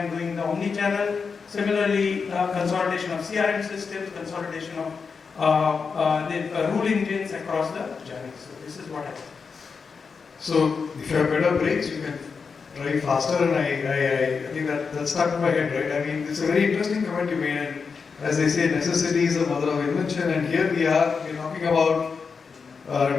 doing the omni-channel, similarly consolidation of CRM systems, consolidation of the rule engines across the journeys. So this is what I think. So if you have better brakes, you can drive faster, and I think that stuck in my head, right? I mean, it's a very interesting comment you made, and as they say, necessity is the mother of invention, and here we're talking about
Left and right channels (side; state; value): right; quieter; 5.3 dB